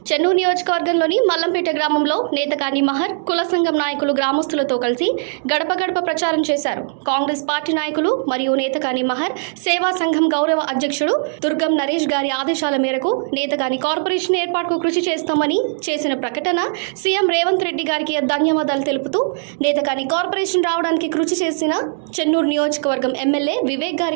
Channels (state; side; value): silent; left; digital silence